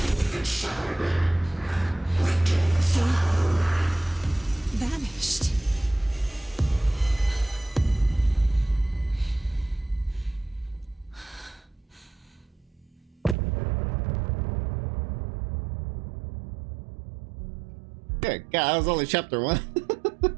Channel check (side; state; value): left; drops out; at 13.4 s